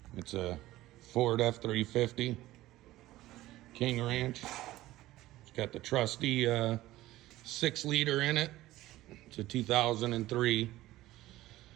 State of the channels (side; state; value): left; quieter; 16.3 dB